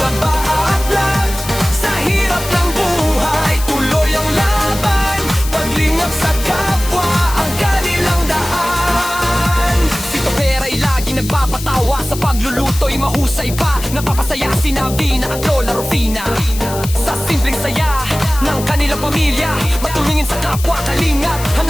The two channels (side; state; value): left; noise; hiss, 11 dB below the sound